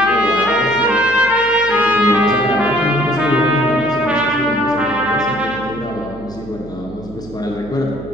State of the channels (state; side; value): noise; right; hum, 17 dB below the sound